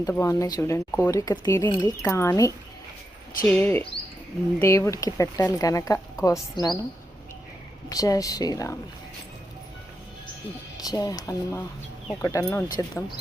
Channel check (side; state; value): both; normal; correlation 0.85